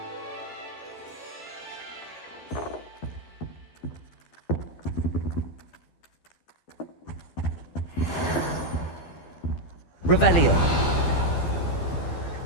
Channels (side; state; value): right; late; 12 ms